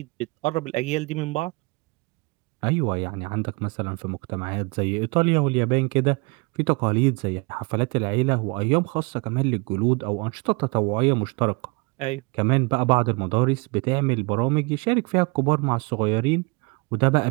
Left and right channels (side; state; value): left; quieter; 28.7 dB